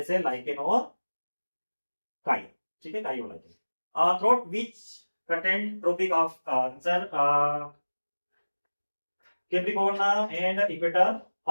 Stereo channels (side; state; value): both; inverted; correlation -1.00